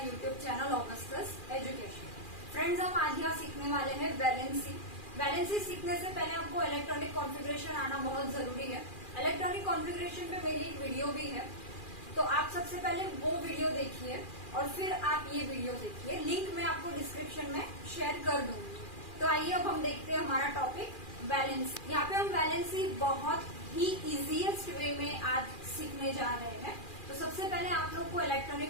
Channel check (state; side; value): late; right; 2.4 ms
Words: YouTube channel Augustus education. Friends, हम आज यहाँ सीखने वाले हैं वैलेंसी। वैलेंसी सीखने से पहले आपको इलेक्ट्रॉनिक कॉन्फ़िगरेशन आना बहुत जरूरी है। इलेक्ट्रॉनिक कॉन्फ़िगरेशन पे मेरी एक वीडियो भी है, तो आप सबसे पहले वो वीडियो देखिए और फिर आप ये वीडियो देखिए। लिंक मैं आपको डिस्क्रिप्शन में शेयर कर दूंगी। तो आइए अब हम देखते हैं हमारा टॉपिक वैलेंसी। यहाँ पे हम वैलेंसी बहुत ही इजीएस्ट वे में आज सीखने जा रहे हैं। तो सबसे पहले आप लोग को इलेक्ट्रॉनिक